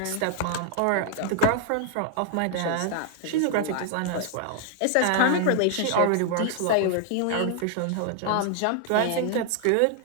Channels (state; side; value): different; both; correlation 0.00